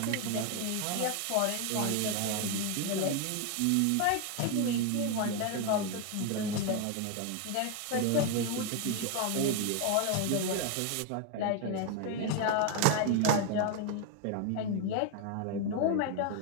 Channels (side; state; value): both; different; correlation 0.01